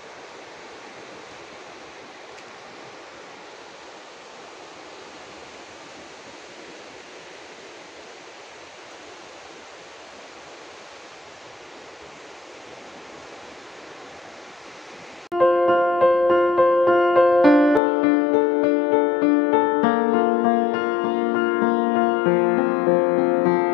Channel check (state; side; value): drops out; right; at 17.8 s